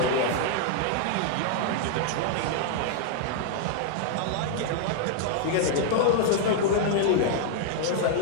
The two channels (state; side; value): different; both; correlation -0.01